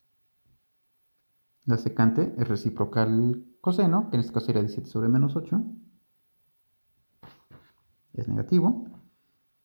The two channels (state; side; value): inverted; both; correlation -1.00